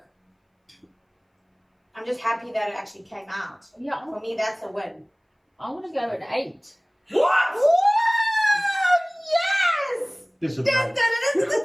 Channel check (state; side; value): identical; both; correlation 1.00